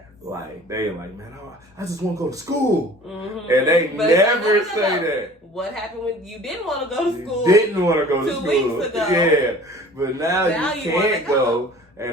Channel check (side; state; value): both; normal; correlation 0.46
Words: Like they're like, man, I just want to go to school. And they never say that. What happened when you didn't want to go to school? You didn't want to go to school. 2 weeks ago. Yeah. But now you can't go.